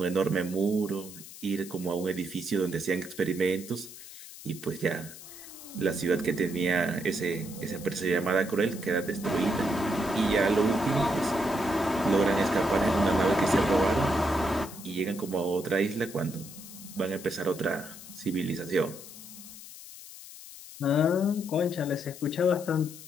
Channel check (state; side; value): noise; left; hiss, 15 dB below the sound